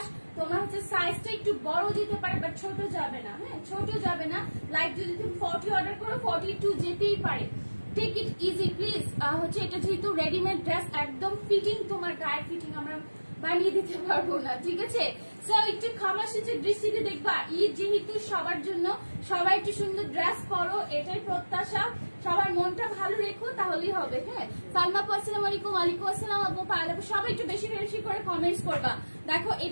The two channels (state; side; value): inverted; both; correlation -1.00